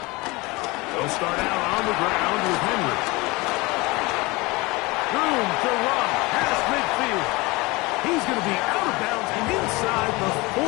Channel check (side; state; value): right; quieter; 23.5 dB